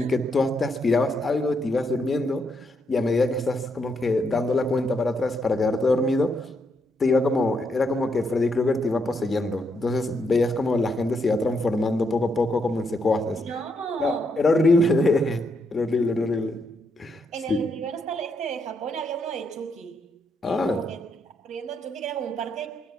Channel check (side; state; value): both; normal; correlation 0.78